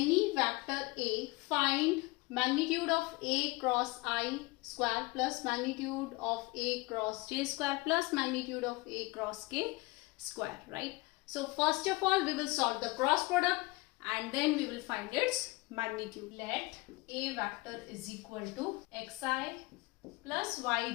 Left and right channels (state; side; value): quieter; right; 23.4 dB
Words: vector A, find magnitude of A cross I square plus magnitude of A cross J square plus magnitude of A cross K square, right? So first of all, we will solve the cross product and then we will find its magnitude. Let A vector is equal to xi plus